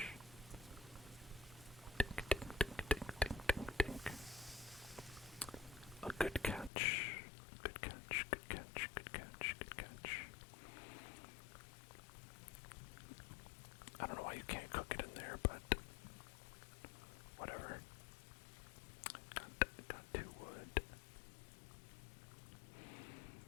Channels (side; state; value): right; drops out; at 6.7 s